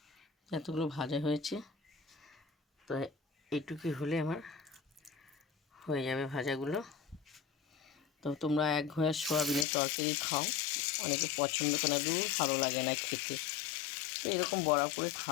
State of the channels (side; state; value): right; drops out; at 9.7 s